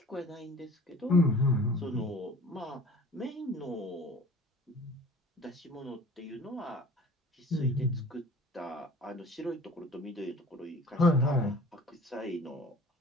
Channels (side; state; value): both; normal; correlation 0.47